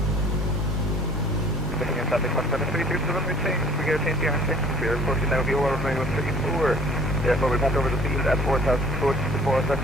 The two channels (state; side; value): normal; both; correlation 0.52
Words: Looking at traffic 173 to the runway change. We get a change behind change. We are approaching now VOR runway 134. Therefore, we pass over the field at 4,000 foot before